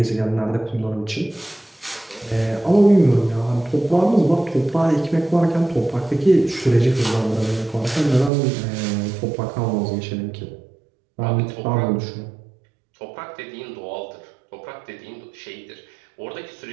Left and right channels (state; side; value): drops out; left; at 8.3 s